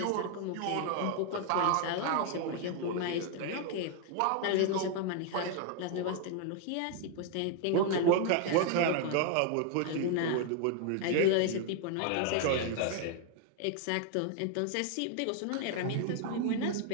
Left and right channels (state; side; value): different; both; correlation 0.00